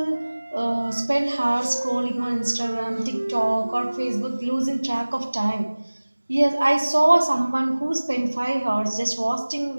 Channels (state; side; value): inverted; both; correlation -1.00